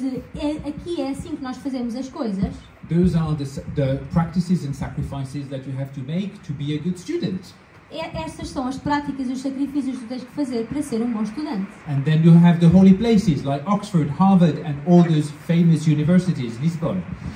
aqui é assim que nós fazemos as coisas. Those are the practices and sacrifices that you have to make to be a good student. Estas são as práticas e os sacrifícios que tu tens que fazer para ser um bom estudante. And then you have the holy places like Oxford, Harvard and all those famous universities, Lisbon.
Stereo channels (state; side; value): identical; both; correlation 1.00